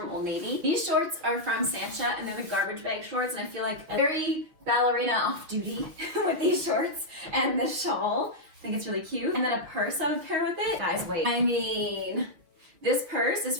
Old Navy. These shorts are from Sancha, and they're the garbage bag shorts, and I feel like a very ballerina off duty with these shorts and this shawl. I think it's really cute. And then a purse I would pair with it. Guys, wait. I mean, this purse is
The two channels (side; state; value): left; late; 6.5 ms